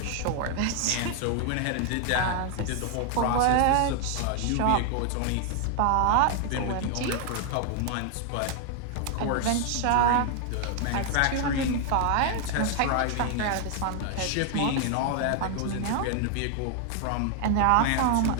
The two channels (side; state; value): both; different; correlation 0.00